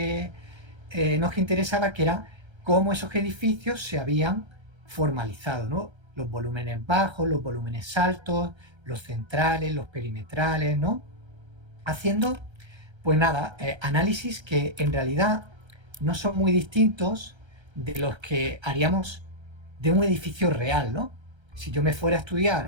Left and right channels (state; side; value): late; left; 1.3 ms